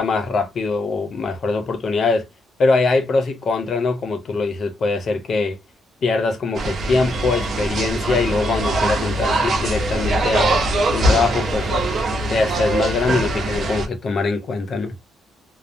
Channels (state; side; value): normal; both; correlation 0.78